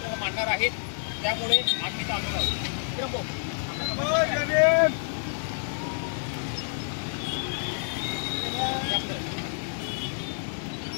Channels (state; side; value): silent; right; 59 dB below the other